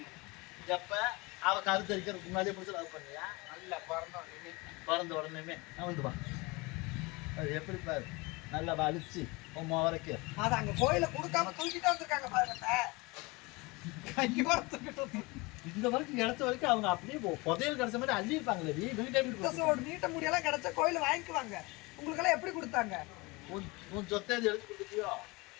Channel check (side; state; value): right; quieter; 24.8 dB